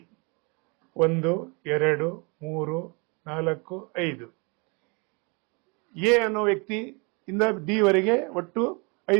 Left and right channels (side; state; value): left; quieter; 31.4 dB